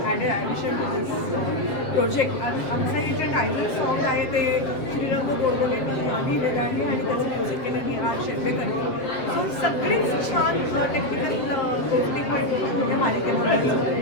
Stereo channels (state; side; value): late; right; 7.6 ms